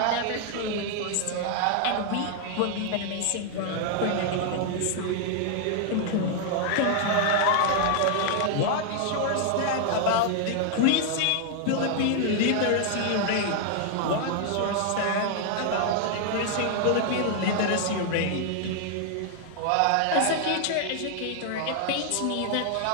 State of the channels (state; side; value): different; both; correlation 0.00